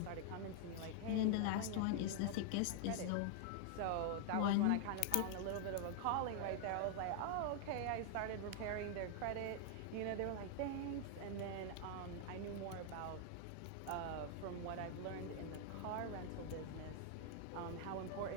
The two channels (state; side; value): different; both; correlation 0.00